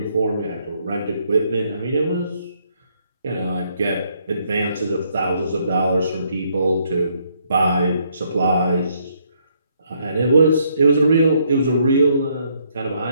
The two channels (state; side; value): inverted; both; correlation -0.71